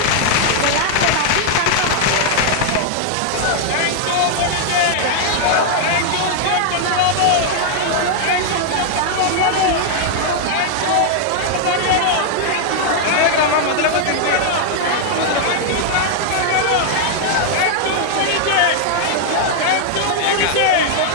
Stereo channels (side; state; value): both; different; correlation 0.00